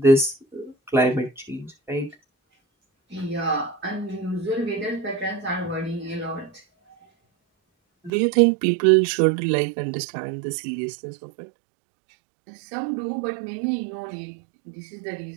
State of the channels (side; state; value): left; drops out; at 8.1 s